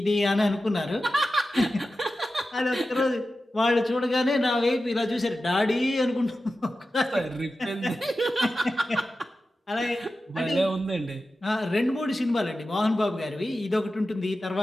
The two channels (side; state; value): both; normal; correlation 0.93